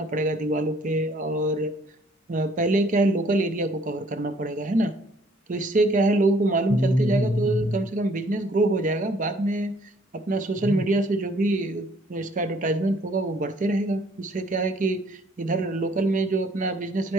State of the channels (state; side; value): normal; both; correlation 0.61